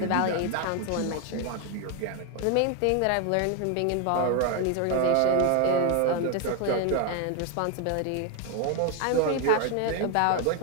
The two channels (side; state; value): both; different; correlation 0.01